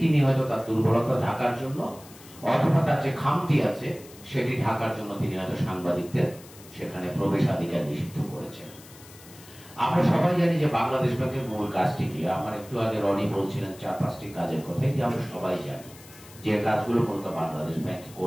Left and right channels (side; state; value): left; noise; hiss, 21 dB below the sound